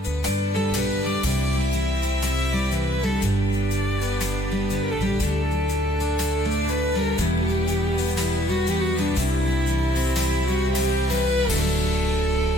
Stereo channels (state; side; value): normal; both; correlation 0.64